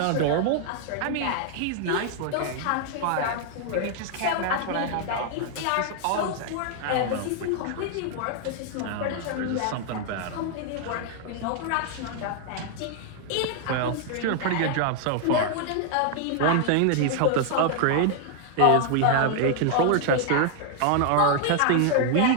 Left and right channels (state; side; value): different; both; correlation 0.00